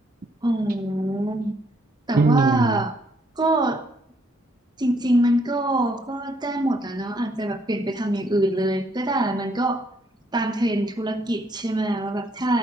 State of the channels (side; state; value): both; normal; correlation 0.70